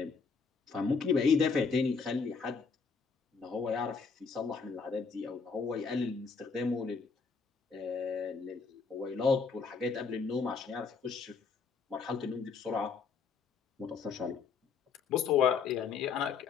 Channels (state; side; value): quieter; right; 5.3 dB